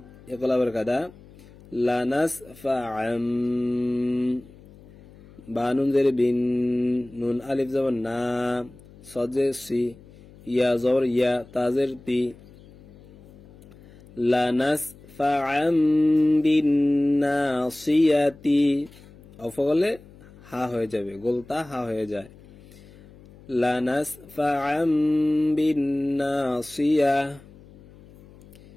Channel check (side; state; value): left; noise; hum, 23 dB below the sound